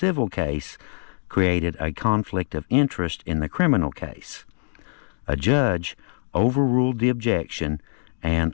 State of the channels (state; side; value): silent; right; 62 dB below the other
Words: case created a conflict of interest in the criminal case. A judge overruled the objection and